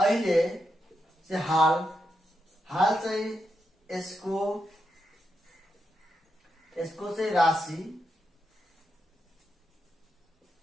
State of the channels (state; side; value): normal; both; correlation 0.84